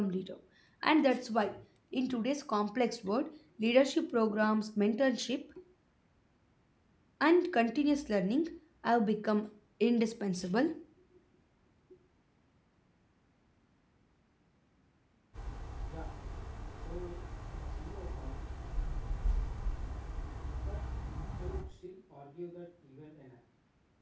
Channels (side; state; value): both; identical; correlation 1.00